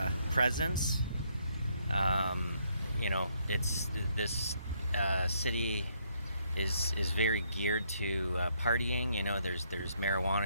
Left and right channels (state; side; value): inverted; both; correlation -0.72